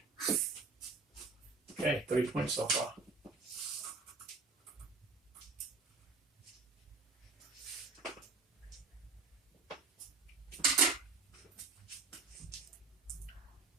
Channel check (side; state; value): left; quieter; 4.1 dB